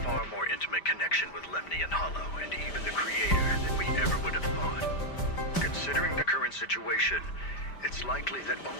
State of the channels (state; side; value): late; right; 5.1 ms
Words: far more intimate connection with Lemnian Hollow and even the Creator than we ever would have thought. Considering the current situation, it's likely that